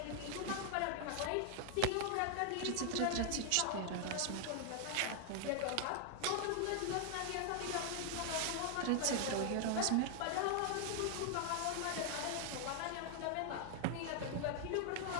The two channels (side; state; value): both; different; correlation 0.00